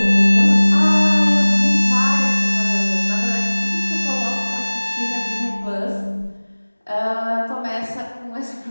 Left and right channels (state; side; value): inverted; both; correlation -1.00